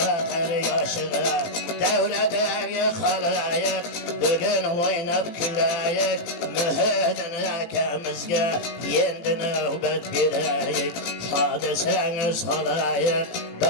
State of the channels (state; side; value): late; right; 18 ms